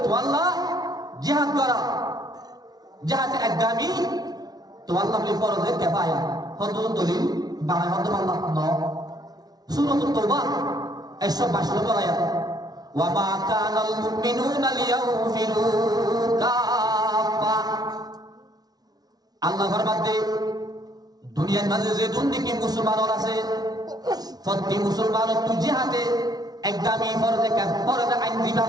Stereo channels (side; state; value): left; late; 0.19 ms